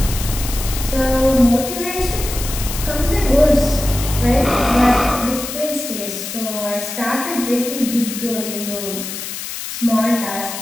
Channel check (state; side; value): noise; left; hiss, 7 dB below the sound